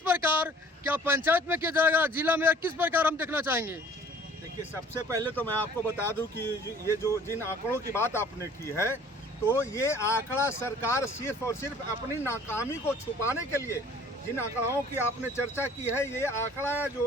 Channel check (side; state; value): both; normal; correlation 0.52